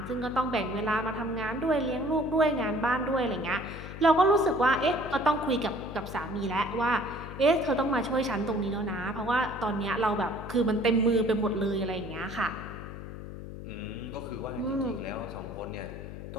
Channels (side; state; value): left; noise; hum, 10 dB below the sound